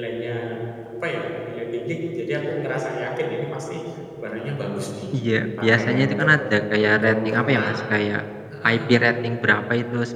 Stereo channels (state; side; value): identical; both; correlation 1.00